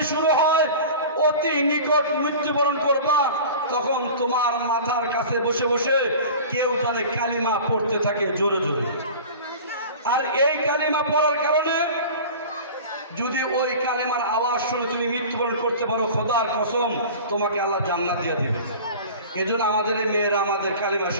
শুরু হয়, অতি নিকট মৃত্যুবরণ করবা, তখন তোমার মাথার কাছে বসে বসে কেউ জানে কালিমা পড়তে থাকে জোরে জোরে। আর এই কালিমা পড়ার কারণে যদি ওই কালেমার আওয়াজ শুনে তুমি মৃত্যুবরণ করতে পারো, খোদার কসম তোমাকে আল্লাহ জান্নাত দিয়ে দেবে। এজন্য আমাদের মেয়েরা আমাদের কালিমা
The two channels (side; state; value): both; inverted; correlation -0.38